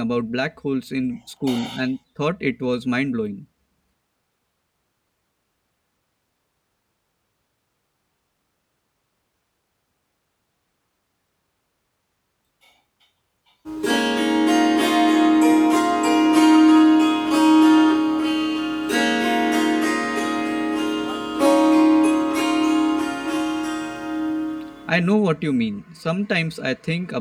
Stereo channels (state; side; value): identical; both; correlation 1.00